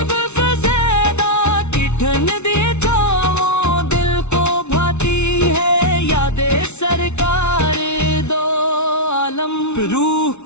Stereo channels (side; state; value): right; late; 0.82 ms